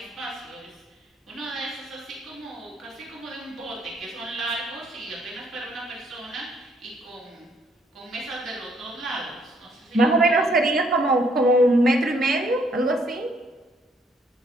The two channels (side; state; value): both; normal; correlation 0.68